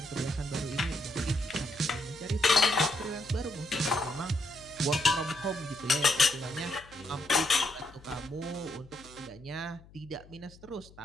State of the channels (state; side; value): noise; left; hum, 23 dB below the sound